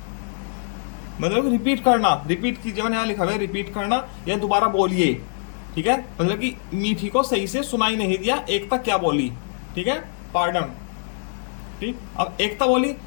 मतलब रिपीट करना, रिपीट कीजिए, मैंने यहाँ लिखा हुआ है रिपीट करना या दोबारा बोलिए। ठीक है, मतलब कि मीठी को सही से सुनाई नहीं दिया एकता क्या बोली। ठीक है, पार्डन। ठीक, अब एकता बोली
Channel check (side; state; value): right; silent; digital silence